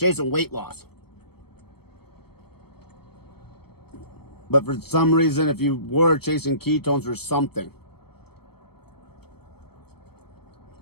weight loss. But for some reason, if you were chasing ketones for something,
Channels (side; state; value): right; late; 0.96 ms